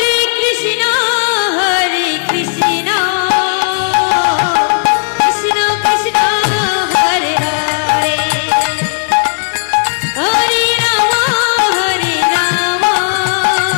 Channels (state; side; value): silent; right; digital silence